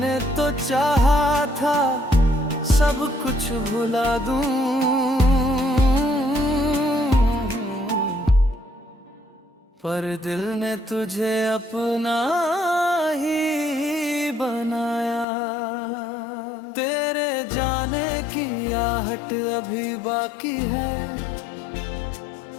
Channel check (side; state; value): right; drops out; at 15.2 s